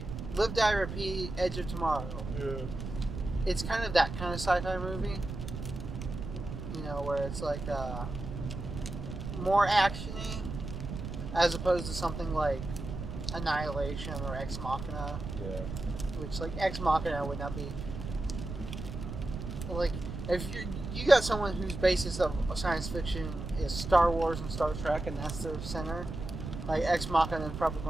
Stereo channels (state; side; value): noise; right; rumble, 7 dB below the sound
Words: Live Die Repeat, Edge of Tomorrow. Yeah. It's kind of that kind of sci-fi movie. You know, where it's like more actiony as opposed to something like Annihilation or Ex Machina. Yeah. Which like Ex Machina would not be like if you got someone whose basis of science fiction is Star Wars and Star Trek and that's their center, like Ex Machina is probably